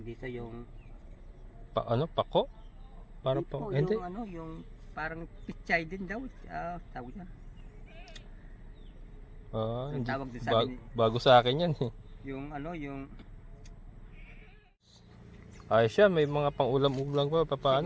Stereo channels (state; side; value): identical; both; correlation 1.00